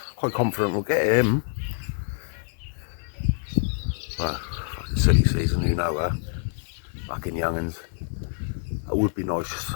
quite confident we'll get him. Well, fucking silly season, you know, fucking young'uns. It would be nice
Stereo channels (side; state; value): right; silent; digital silence